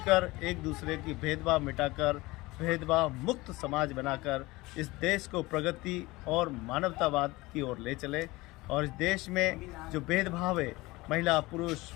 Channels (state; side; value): quieter; right; 21.0 dB